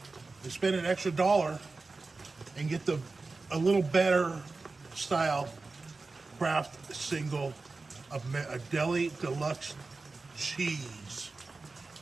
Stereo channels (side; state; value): left; quieter; 3.8 dB